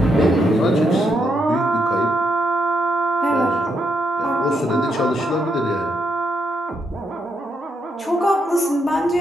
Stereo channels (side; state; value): both; normal; correlation 0.79